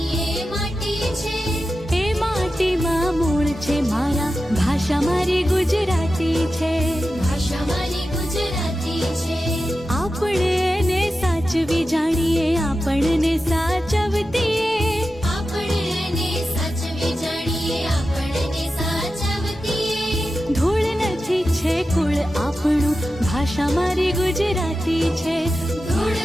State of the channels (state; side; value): normal; both; correlation 0.92